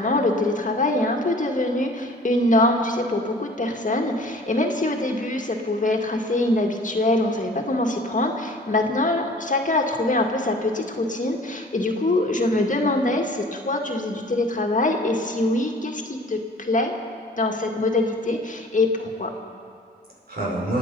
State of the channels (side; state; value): both; normal; correlation 0.48